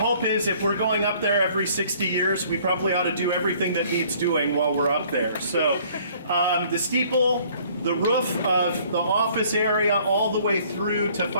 is, if we're going up there every 60 years, we probably ought to do everything that needs doing while we're up there. So the steeple, the roof of the office area, all the way through to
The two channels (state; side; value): inverted; both; correlation -0.57